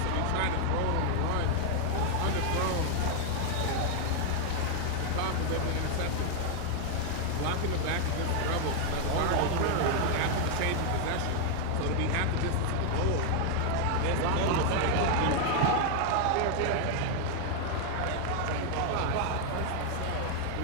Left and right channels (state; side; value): different; both; correlation 0.00